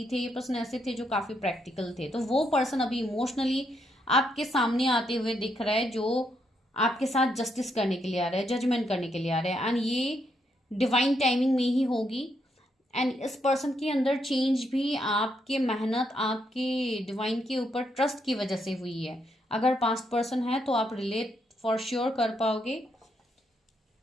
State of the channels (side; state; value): both; normal; correlation 0.77